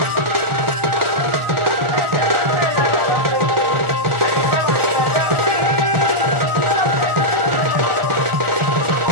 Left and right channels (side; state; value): left; late; 1.4 ms